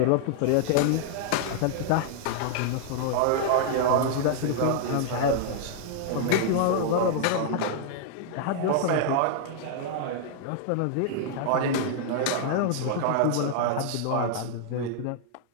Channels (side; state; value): both; different; correlation -0.01